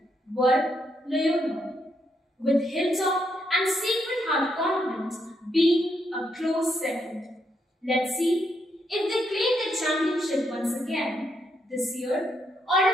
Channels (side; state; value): both; normal; correlation 0.78